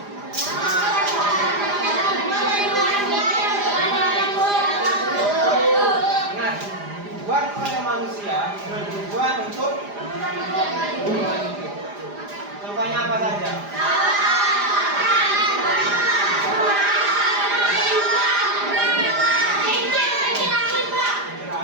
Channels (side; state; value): left; late; 4.9 ms